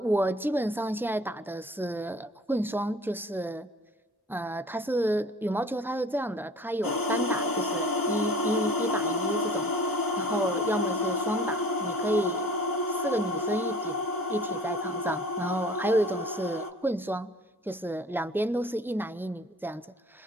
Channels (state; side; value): normal; both; correlation 0.47